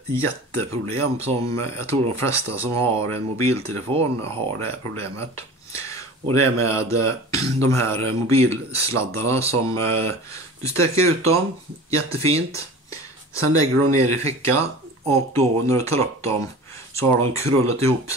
jätteproblem som jag tror de flesta som har en mobiltelefon har det här problemet. Och det är med de här mobilsladdarna som du sträcker ut dem jättefint. Sen lägger du dem ner i fickan och då när du tar upp dem så har de krullat ihop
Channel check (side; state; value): both; normal; correlation 0.38